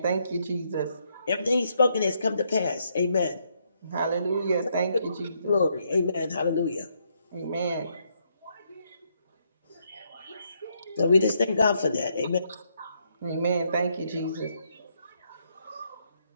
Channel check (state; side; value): inverted; both; correlation -0.75